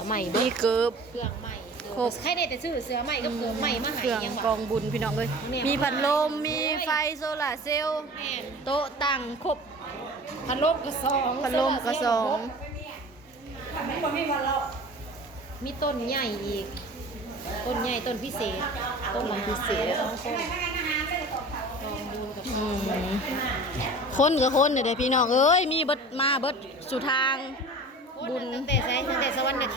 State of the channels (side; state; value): both; normal; correlation 0.40